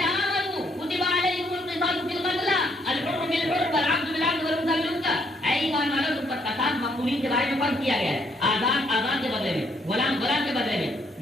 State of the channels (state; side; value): normal; both; correlation 0.71